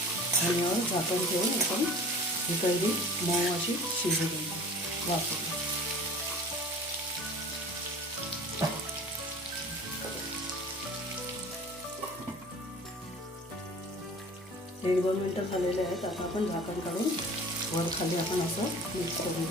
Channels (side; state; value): both; normal; correlation 0.43